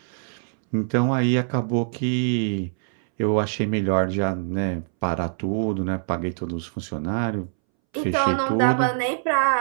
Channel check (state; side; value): silent; left; 63 dB below the other